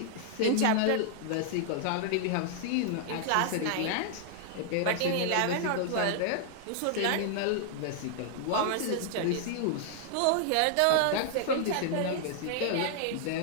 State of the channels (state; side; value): different; both; correlation -0.01